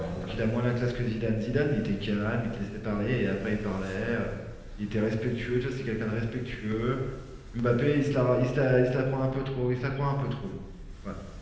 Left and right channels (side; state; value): both; identical; correlation 1.00